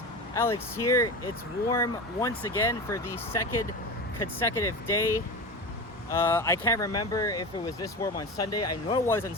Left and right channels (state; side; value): normal; both; correlation 0.27